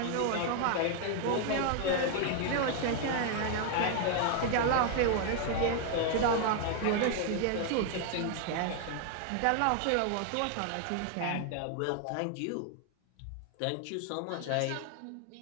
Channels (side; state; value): both; different; correlation 0.00